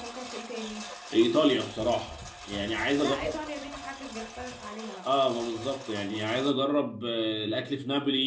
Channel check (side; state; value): both; identical; correlation 1.00